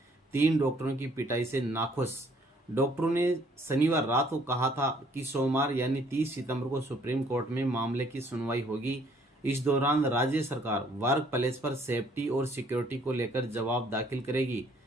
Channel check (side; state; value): both; normal; correlation 0.62